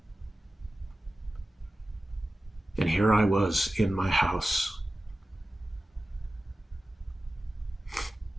and here I was in my house.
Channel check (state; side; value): normal; both; correlation 0.95